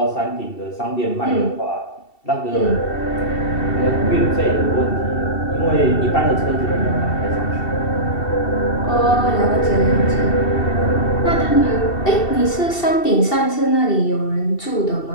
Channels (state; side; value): late; right; 2.7 ms